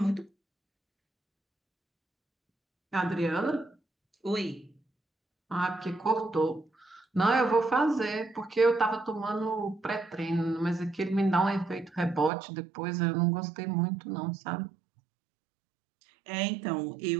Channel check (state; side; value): drops out; left; at 12.3 s